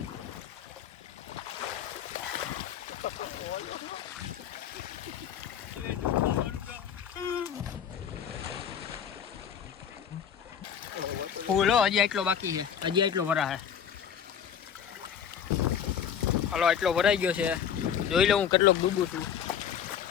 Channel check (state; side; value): quieter; right; 8.4 dB